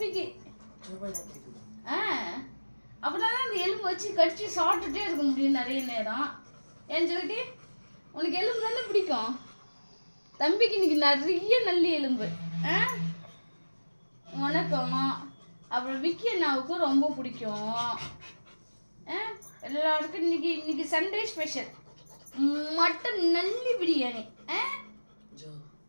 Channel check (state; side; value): inverted; both; correlation -1.00